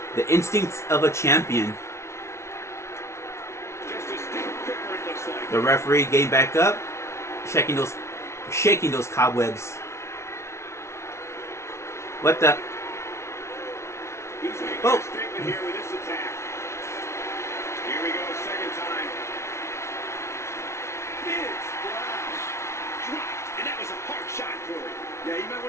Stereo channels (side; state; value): right; late; 0.13 ms